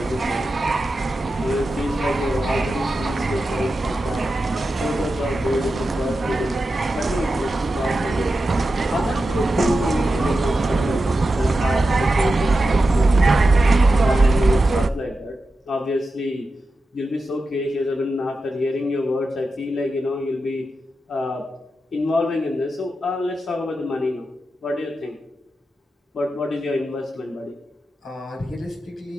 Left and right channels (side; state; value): both; normal; correlation 0.91